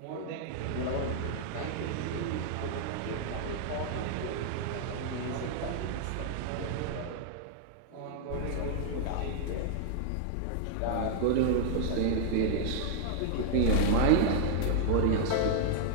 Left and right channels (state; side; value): different; both; correlation -0.01